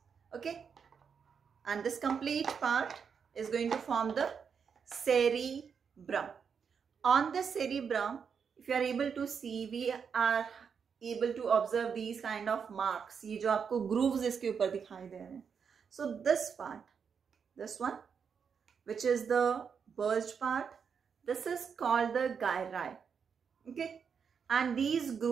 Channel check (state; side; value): quieter; left; 6.6 dB